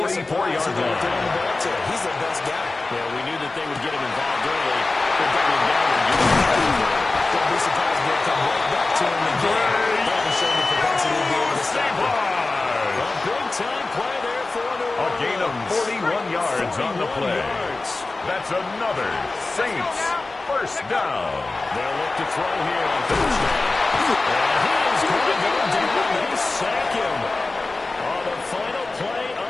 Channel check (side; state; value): right; quieter; 3.3 dB